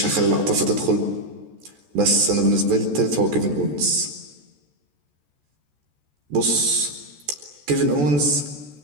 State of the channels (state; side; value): late; left; 14 ms